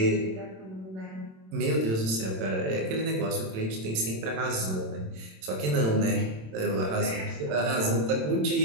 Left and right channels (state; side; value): late; left; 27 ms